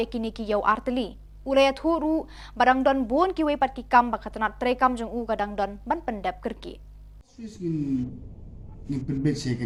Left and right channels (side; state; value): both; identical; correlation 1.00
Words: ni ki yo arteli. Ulaya thuru barang don bon ki we pat ki kam baka tanat tre kam jung u kadang don ban pendap kerki. Ni penbet saya